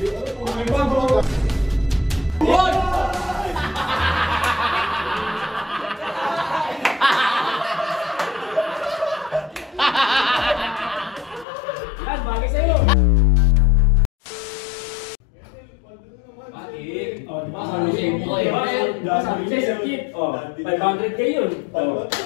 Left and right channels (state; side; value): drops out; right; at 11.5 s